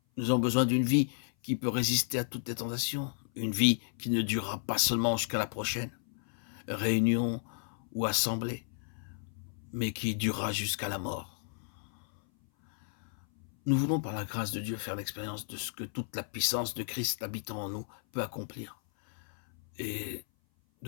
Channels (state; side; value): silent; right; 56 dB below the other